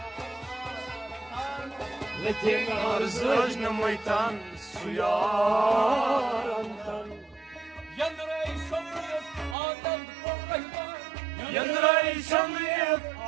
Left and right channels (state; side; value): drops out; left; at 9.6 s